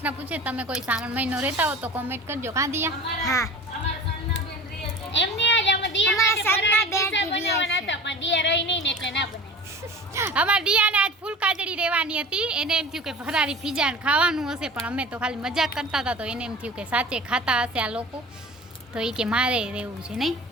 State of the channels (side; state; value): both; normal; correlation 0.38